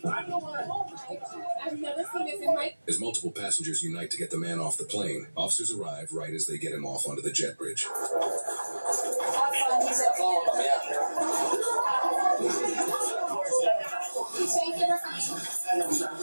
I've never seen this in my. As multiple passengers unite to get the man off the plane, officers arrive right as they get him off onto the jet bridge. Thank you for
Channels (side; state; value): both; inverted; correlation -1.00